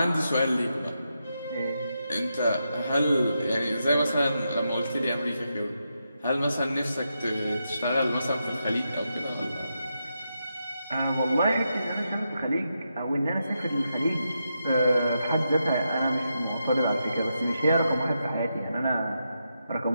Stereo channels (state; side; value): inverted; both; correlation -0.85